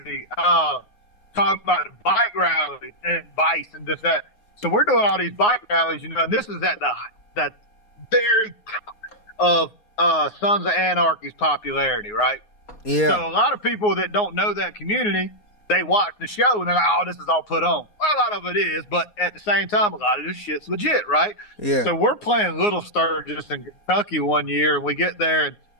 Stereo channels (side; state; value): right; late; 9.6 ms